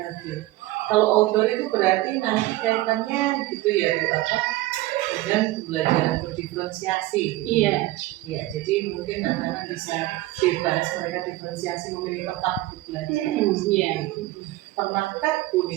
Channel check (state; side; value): quieter; left; 17.5 dB